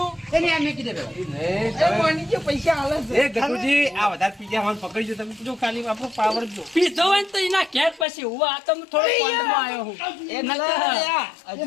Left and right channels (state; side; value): drops out; right; at 8.1 s